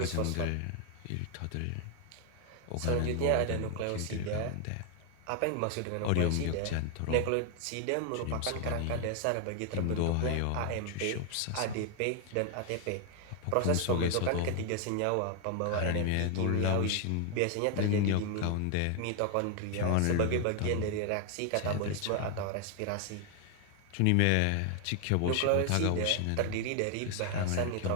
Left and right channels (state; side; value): different; both; correlation 0.00